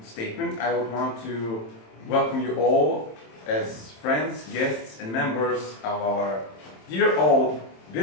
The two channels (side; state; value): right; late; 27 ms